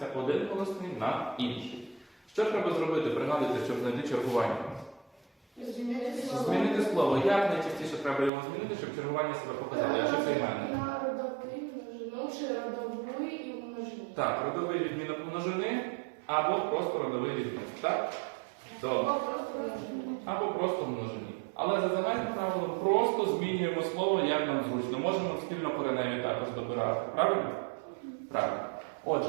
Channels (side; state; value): left; drops out; at 8.3 s